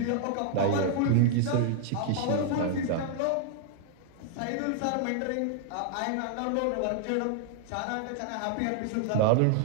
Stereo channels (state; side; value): different; both; correlation 0.00